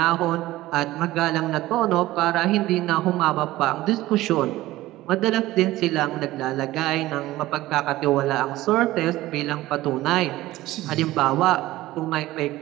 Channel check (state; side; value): quieter; left; 16.8 dB